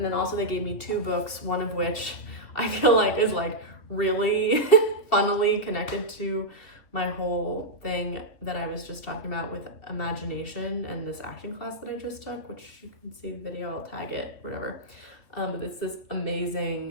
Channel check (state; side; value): late; right; 3.0 ms